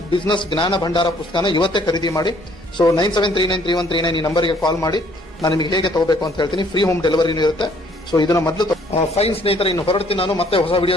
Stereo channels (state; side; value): normal; both; correlation 0.62